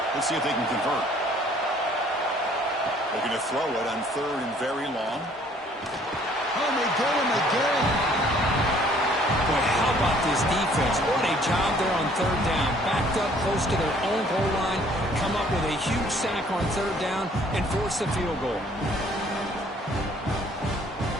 Let's see if they can convert. They're going to throw it on 3rd and very long. Oh, they get him again. Boy, how about this defense? What a job there on 3rd down. Backed up close to their own goal line, come up with a huge sack on 3rd down, and force the field goal.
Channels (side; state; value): both; normal; correlation 0.59